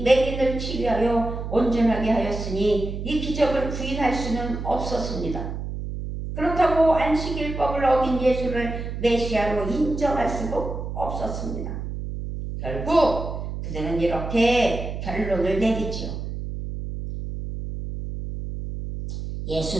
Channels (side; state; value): right; noise; hum, 6 dB below the sound